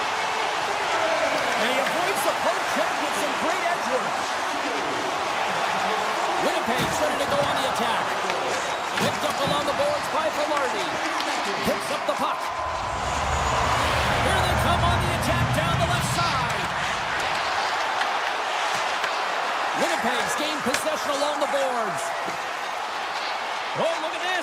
And he avoids the poke check with some great edge work. Winnipeg's ready to go on the attack. Picked up along the boards by Velarde. Picks up the puck. Here they come on the attack down the left side. Winnipeg's gained possession along the boards. Oh, look at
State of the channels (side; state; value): both; identical; correlation 1.00